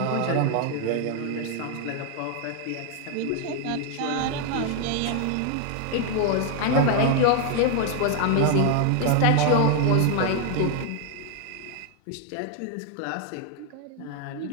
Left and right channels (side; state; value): both; different; correlation 0.01